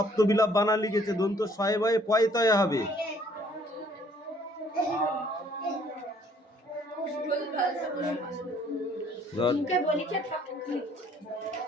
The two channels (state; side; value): normal; both; correlation 0.61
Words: বানান লিখেছে, দন্ত শয়ে বয়ে পয়তয়ে হবে।